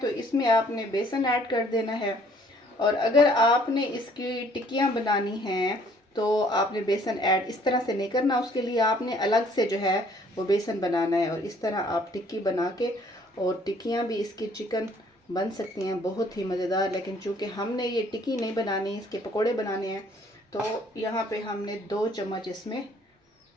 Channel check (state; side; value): normal; both; correlation 0.60